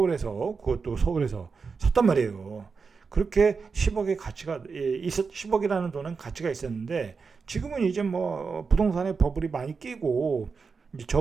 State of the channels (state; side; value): quieter; left; 5.0 dB